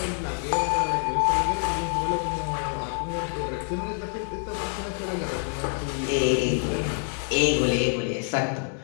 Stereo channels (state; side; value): silent; right; 60 dB below the other